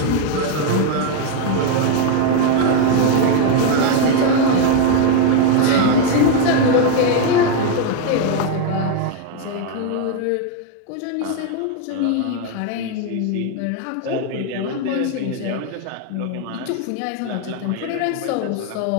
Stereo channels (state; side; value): different; both; correlation 0.01